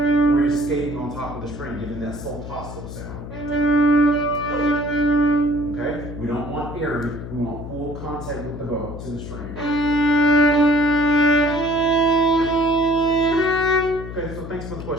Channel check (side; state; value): left; noise; hum, 10 dB below the sound